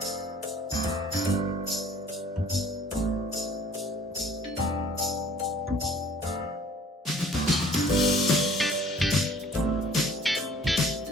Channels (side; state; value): both; normal; correlation 0.54